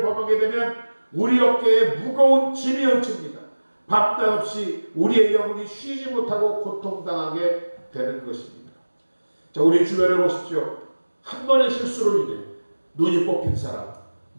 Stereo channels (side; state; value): both; inverted; correlation -1.00